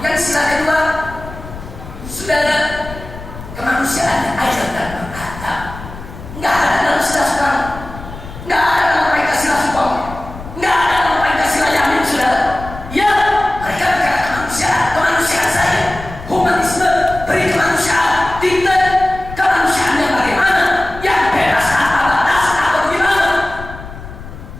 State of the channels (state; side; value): noise; left; rumble, 13 dB below the sound